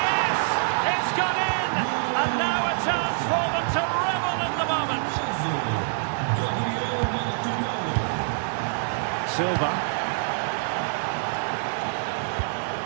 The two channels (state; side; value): silent; left; digital silence